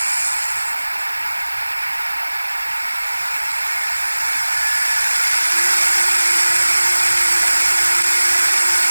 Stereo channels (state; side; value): inverted; both; correlation -1.00